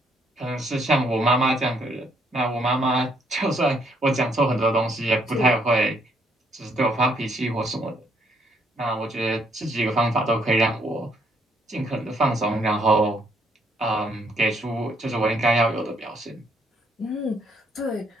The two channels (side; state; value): both; normal; correlation 0.70